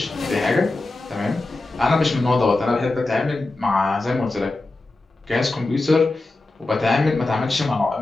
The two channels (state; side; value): quieter; right; 3.1 dB